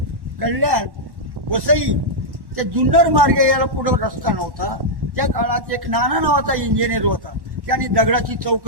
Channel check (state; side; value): late; left; 1.1 ms